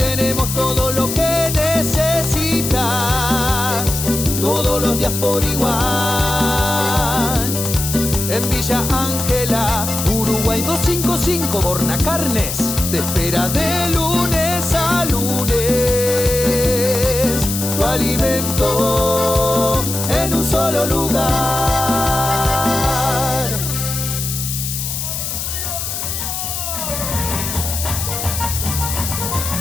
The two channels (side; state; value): left; noise; hiss, 4 dB below the sound